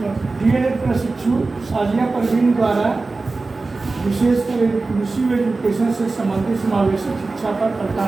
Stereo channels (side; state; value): left; quieter; 3.6 dB